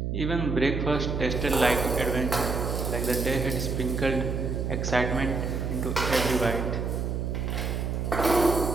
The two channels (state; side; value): noise; right; hum, 1 dB below the sound